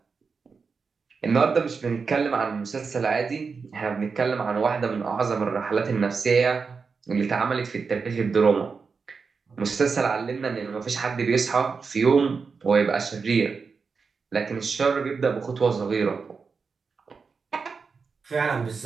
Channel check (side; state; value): left; quieter; 5.1 dB